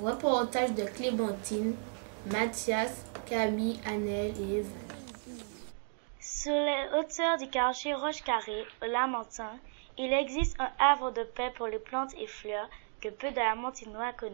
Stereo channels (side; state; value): left; silent; 55 dB below the other